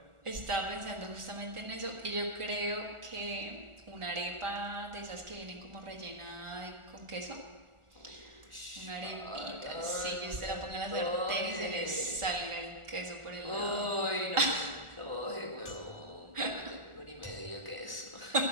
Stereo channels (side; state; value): left; late; 1.4 ms